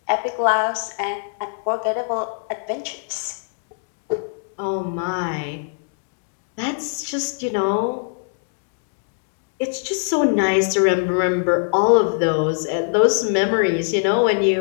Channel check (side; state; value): right; silent; digital silence